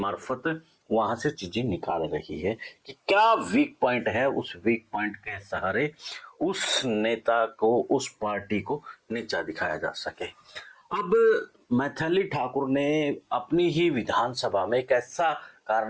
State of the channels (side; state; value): both; identical; correlation 1.00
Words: वहां से चीजें निकाल रही है कि क्या वीक पॉइंट है। उस वीक पॉइंट के सहारे उस नेता को, उस पार्टी को नीचा दिखाया जा सके। अब मैथिली ठाकुर ने अपनी ही विधानसभा में एक ऐसा